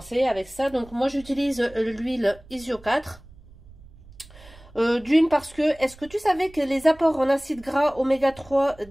avec ça. Donc moi j'utilise l'huile Isio 4. D'une parce que, est-ce que tu savais que les apports en acides gras oméga 3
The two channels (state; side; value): noise; right; rumble, 23 dB below the sound